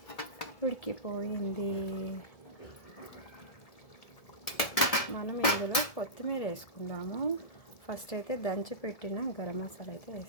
ఉడికిపోయింది. మనం ఇందులో కొత్తిమీర వేసుకుందాము. ఫస్ట్ అయితే దంచి పెట్టిన గరం మసాలా అయితే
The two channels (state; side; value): late; right; 1.7 ms